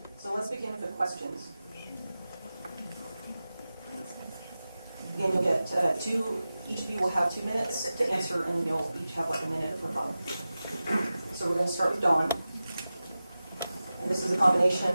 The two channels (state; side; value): inverted; both; correlation -0.95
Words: So let's begin with the questions. Again, you'll get each of you will have 2 minutes to answer, and you'll each have like a minute for both. So we're going to start with Dawn. And this is a combination